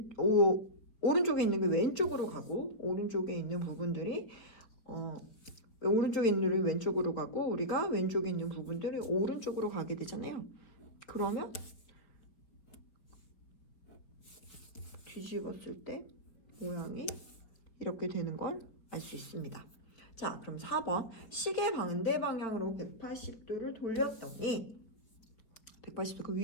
오른쪽에 있는 게 왼쪽으로 가고 오른쪽에 있는 부분들이 오른쪽에 있는 게 왼쪽으로 가고 우리가 왼쪽에 있는 부분들이 오른쪽으로 가게 되잖아요. 그러면 뒤집었을 때 모양이 이렇게 되는 걸 알 수 있습니다. 자, 그럼 4번 시계 반대 방향으로 180도를 돌렸더니 180도 그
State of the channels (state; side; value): late; right; 4.9 ms